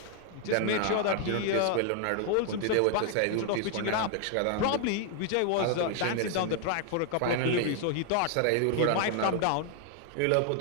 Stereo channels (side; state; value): both; different; correlation 0.00